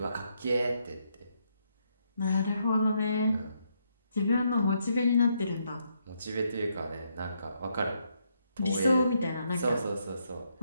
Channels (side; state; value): both; inverted; correlation -0.77